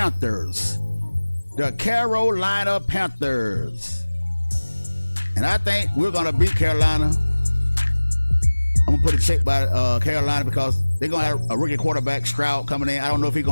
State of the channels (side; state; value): both; inverted; correlation -1.00